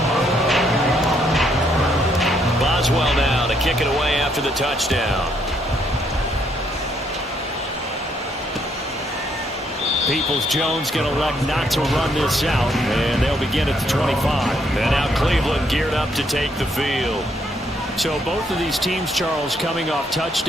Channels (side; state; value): both; normal; correlation 0.72